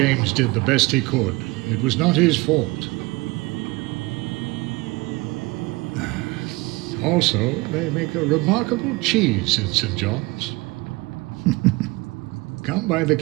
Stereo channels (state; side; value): quieter; left; 23.1 dB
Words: did the best he could. It was not his fault. Also, they make a remarkable cheese in St. John's. Come by the